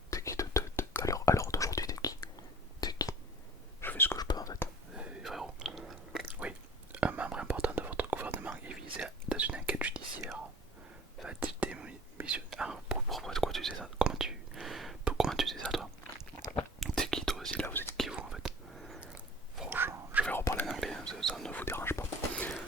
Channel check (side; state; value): both; normal; correlation 0.45